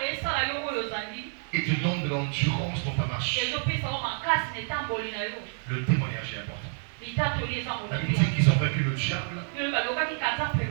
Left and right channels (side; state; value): left; silent; 59 dB below the other